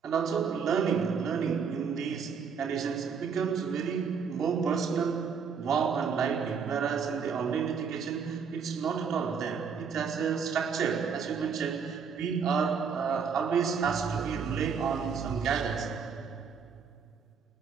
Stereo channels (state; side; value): quieter; left; 6.2 dB